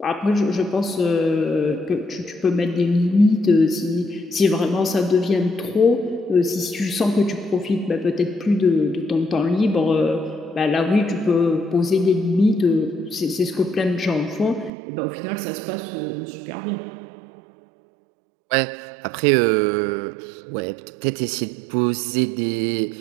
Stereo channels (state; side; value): drops out; left; at 14.7 s